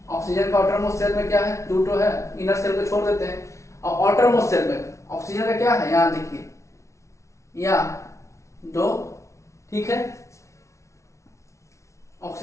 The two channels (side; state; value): right; late; 0.14 ms